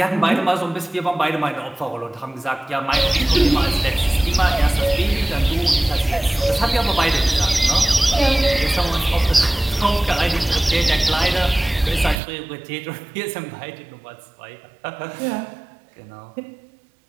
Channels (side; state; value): left; drops out; at 12.2 s